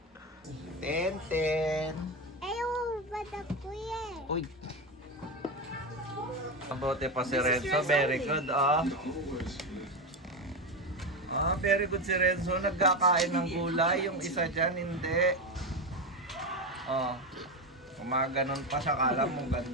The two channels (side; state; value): both; normal; correlation 0.15